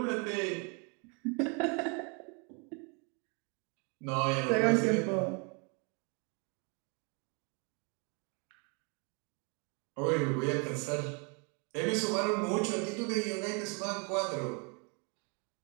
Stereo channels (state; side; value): quieter; left; 34.6 dB